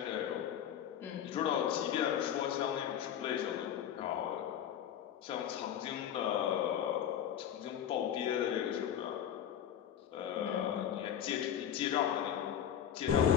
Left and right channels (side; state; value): right; quieter; 9.7 dB